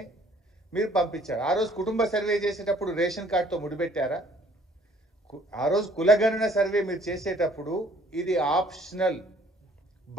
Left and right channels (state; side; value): normal; both; correlation 0.58